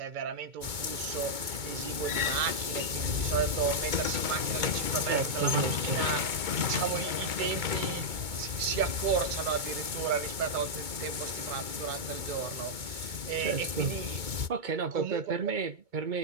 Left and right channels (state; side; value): late; left; 2.2 ms